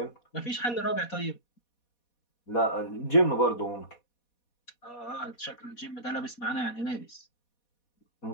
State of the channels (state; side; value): late; right; 4.2 ms